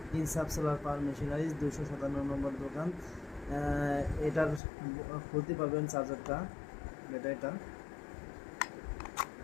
ইনসাফ সোলার পাওয়ার মেশিনারিজ, 257 নম্বর দোকান। এটার খুলতে পারবেন চার্জারটা, ব্যাটারিটা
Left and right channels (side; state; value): right; drops out; at 4.6 s